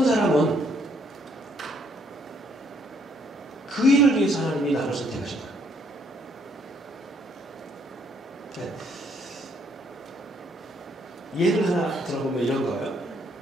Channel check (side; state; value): both; normal; correlation 0.68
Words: 사람은 그 일을 위해서 하나님이 나를 선택하신 거예요. 네. 예를 하나 들어보면 이런 거예요.